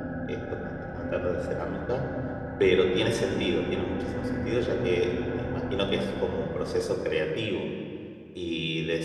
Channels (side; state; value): both; identical; correlation 1.00